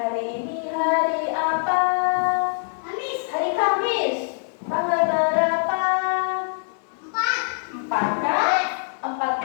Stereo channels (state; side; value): silent; right; digital silence